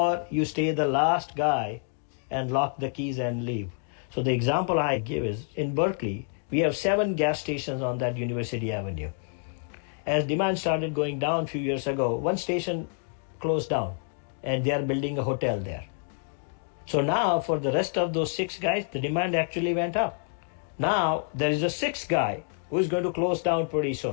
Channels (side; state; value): right; silent; 59 dB below the other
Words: you stay the last guy and lock the keys and leave. So the example I give is in Berkeley, we have 7 gas stations on that University Avenue. As demand started going down a few years ago, one station closed down and they are building a hotel there. So now for the rest of those 6 guys, the demand actually went up. Now there is a 6th guy who is going to close down pretty